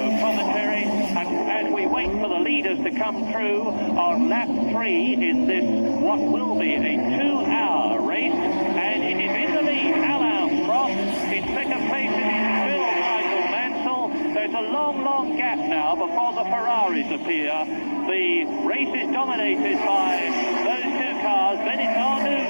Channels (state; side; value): inverted; both; correlation -1.00